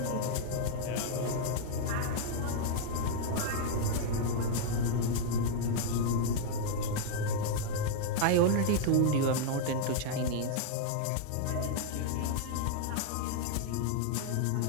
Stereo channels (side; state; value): both; different; correlation 0.00